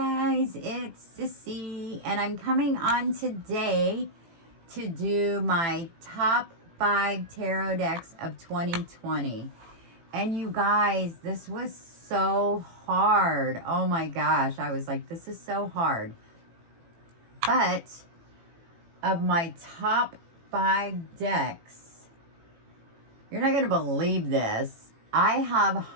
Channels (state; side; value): late; left; 18 ms